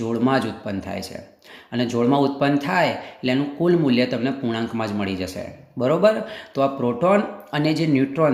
જ ઉત્પન્ન થાય છે, અને જોડમાં ઉત્પન્ન થાય એટલે એનું કુલ મૂલ્ય તમને પૂર્ણાંકમાં જ મળી જશે. બરાબર? તો આ પ્રોટોન અને જે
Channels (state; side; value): identical; both; correlation 1.00